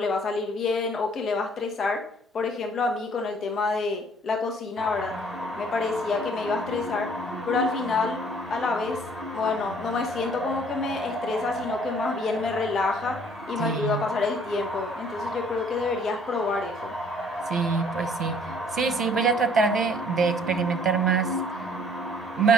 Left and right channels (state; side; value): normal; both; correlation 0.58